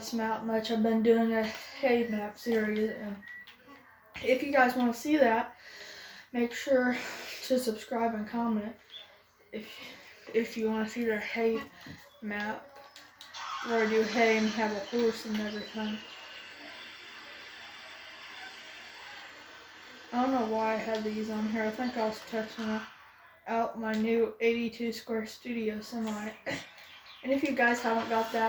map much. I've been doing a hay map series, and if you guys want to see that, make sure to subscribe and comment if you want to see the hay map, where I do hay and have a horse and everything. I don't know why I had these on here. I think I was testing out my new 82 square studio semi. And if you guys haven't got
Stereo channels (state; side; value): identical; both; correlation 1.00